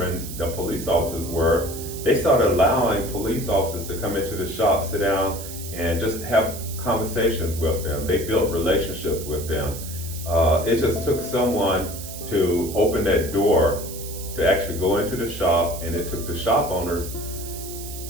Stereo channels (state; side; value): noise; right; hiss, 11 dB below the sound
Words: the police officers were, they started allowing police officers to come into the shop, sit down, and just have conversations with them. They built relationships with them. It just took someone to open that door to actually go into the shop, and it took the shop owners